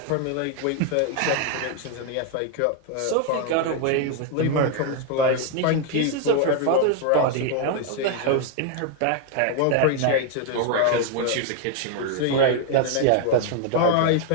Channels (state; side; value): different; both; correlation 0.00